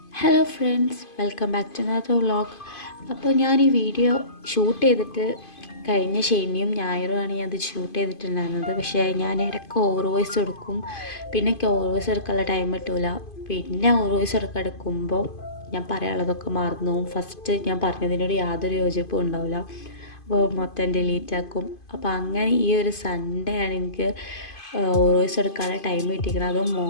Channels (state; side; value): late; right; 2.5 ms